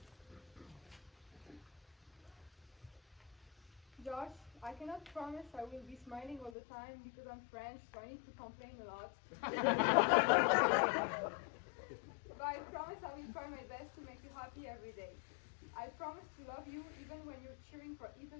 Josh, I cannot promise I will be smiling all the time because I'm French, so I need to complain a lot. But I promise I will try my best to make you happy every day. I promise to love you even when you're cheering for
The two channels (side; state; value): right; drops out; at 6.5 s